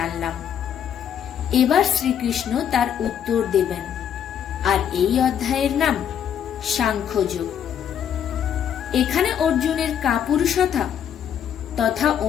এবার শ্রীকৃষ্ণ তার উত্তর দেবেন, আর এই অধ্যায়ের নাম সাংখ্যযোগ। এখানে অর্জুনের কাপুরুষতা তথা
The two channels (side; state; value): right; quieter; 9.0 dB